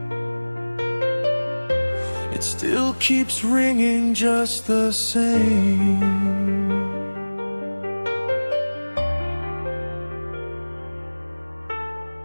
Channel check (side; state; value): both; inverted; correlation -1.00